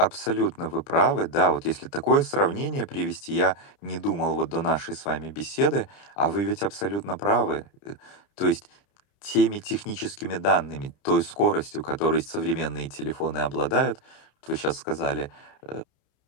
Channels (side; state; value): right; late; 30 ms